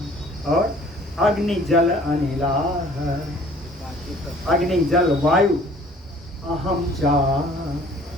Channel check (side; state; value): both; normal; correlation 0.53